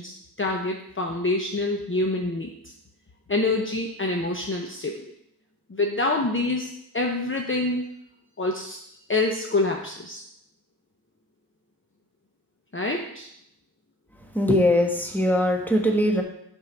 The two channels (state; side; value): normal; both; correlation 0.38